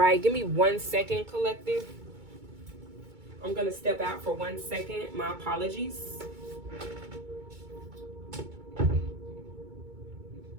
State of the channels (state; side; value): late; left; 2.2 ms